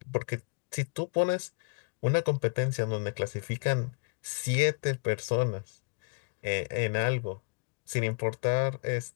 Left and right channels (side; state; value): right; quieter; 36.5 dB